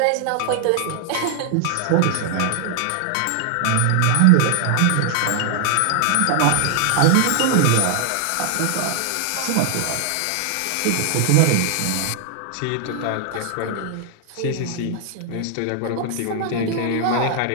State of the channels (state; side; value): different; both; correlation 0.00